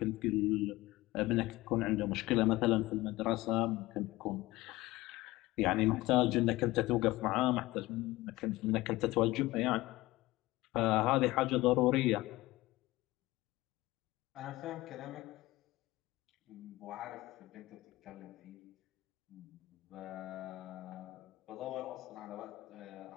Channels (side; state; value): right; quieter; 19.0 dB